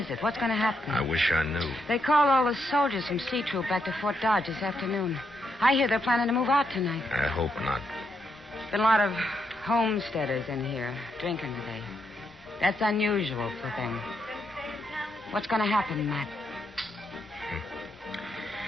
it? What's going to happen? I wish I knew. They called all the soldiers from C Troop back to Fort Dodge this afternoon. I hear they're planning to move out tonight. I hope not. Been a lot of homesteaders in here drinking today. That's unusual for them. What's going to happen, Matt?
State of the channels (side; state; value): both; normal; correlation 0.80